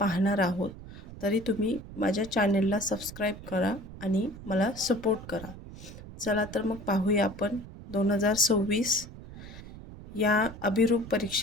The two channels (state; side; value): noise; right; rumble, 14 dB below the sound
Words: आहोत। तरी तुम्ही माझ्या चॅनलला सबस्क्राईब करा आणि मला सपोर्ट करा। चला तर मग पाहूया आपण 2026 या अभिरूप